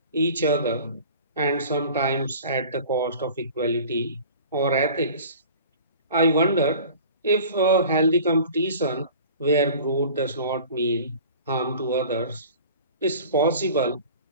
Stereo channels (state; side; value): inverted; both; correlation -0.43